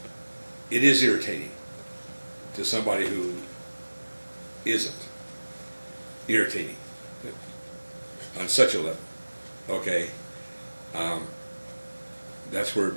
it is irritating to somebody who isn't. Irritating on such a level, okay? That's where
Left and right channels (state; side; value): inverted; both; correlation -1.00